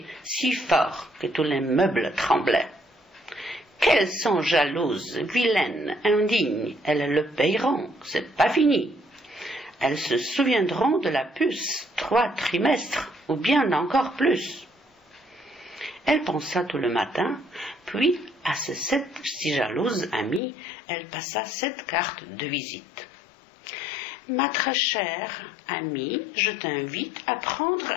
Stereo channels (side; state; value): right; drops out; at 20.4 s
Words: si fort que tous les meubles tremblaient. Qu'elles sont jalouses, vilaines, indignes, elles le payeront, c'est pas fini. Elles se souviendront de la puce 3 trimestres, ou bien encore plus. Elle pensa tout le matin, puis à ses 7 si jalouses amies, elle passa 7 cartes de visite. « Ma très chère amie, je t'invite à prendre